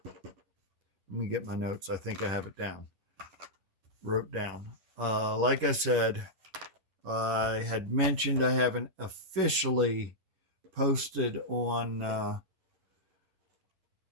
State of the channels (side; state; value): left; late; 10 ms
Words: Let me get my notes. I think I have it down. Wrote down. Like I said, I had mentioned I haven't officially posted on